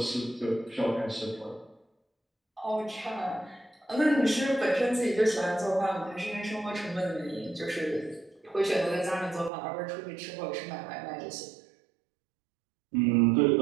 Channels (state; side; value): drops out; left; at 9.5 s